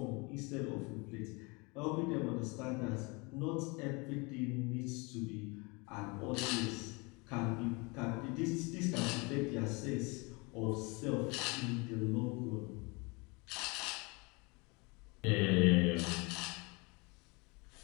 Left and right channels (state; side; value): quieter; right; 28.0 dB